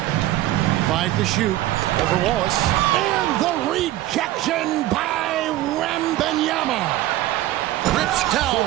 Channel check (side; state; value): left; quieter; 15.1 dB